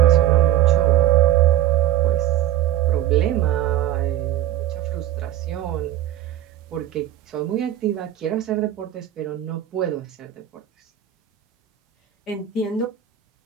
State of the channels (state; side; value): quieter; left; 12.2 dB